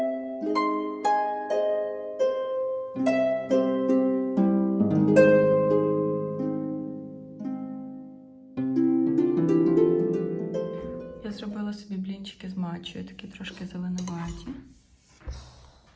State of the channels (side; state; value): both; identical; correlation 1.00